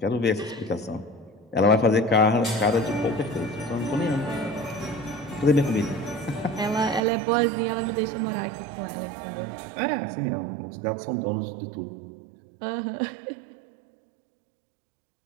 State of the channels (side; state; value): left; drops out; at 7.0 s